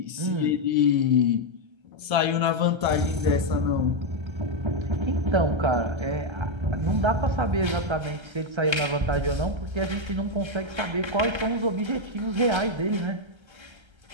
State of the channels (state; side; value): late; left; 1.3 ms